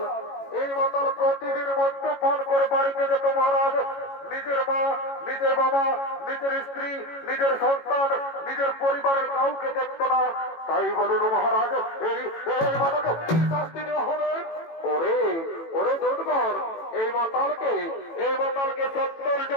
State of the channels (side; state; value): right; late; 18 ms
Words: প্রতিদিন মদ্যপান করে বাড়িতে যেত মহারাজ নিজের মা নিজের বাবা নিজের স্ত্রী নিজের সন্তান নিজের পরিবারের কাউকে দেখত না তাই বলুন মহারাজ এই মাতাকে কি শাস্তি দেওয়া হবে ওরে ওরে দুধ মাতালকে 70